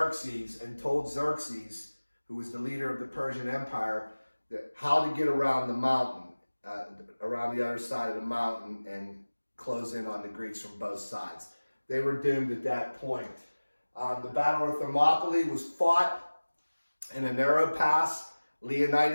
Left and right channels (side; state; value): both; inverted; correlation -1.00